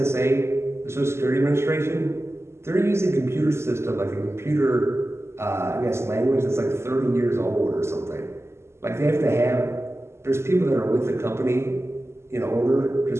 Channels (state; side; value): late; left; 0.13 ms